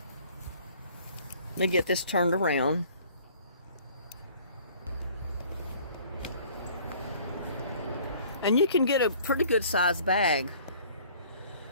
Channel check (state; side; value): inverted; both; correlation -0.54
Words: Let me get this turned around. And you can get a pretty good sized bag